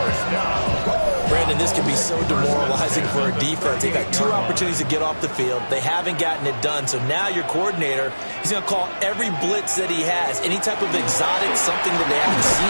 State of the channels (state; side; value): inverted; both; correlation -1.00